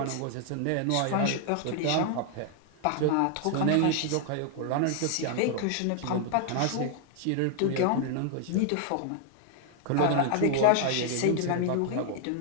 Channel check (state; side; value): different; both; correlation 0.00